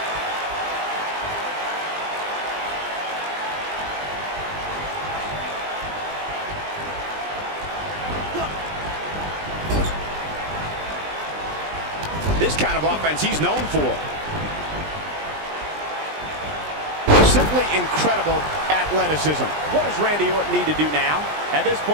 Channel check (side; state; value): left; late; 20 ms